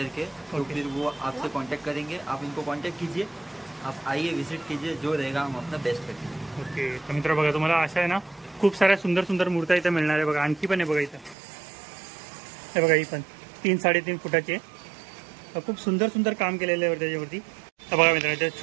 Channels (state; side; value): drops out; left; at 11.4 s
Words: के. तो फिर वो आपसे कांटेक्ट करेंगे, आप इनको कांटेक्ट कीजिए, आप आइए विजिट कीजिए, जो रहेगा हम अपना बेस्ट करेंगे. ओके. तर मित्र बघा तुम्हाला अशा आहे ना खूप साऱ्या सुंदर सुंदर मूर्त्या इथं मिळणार आहे. बघा आणखी पण आहे बघा इथं. हे बघा ही पण 3-3.5 फुटाची आहे. खूप सुंदर सुंदर काम केलेलं आहे त्याच्यावरती. तर बघा मित्रांनो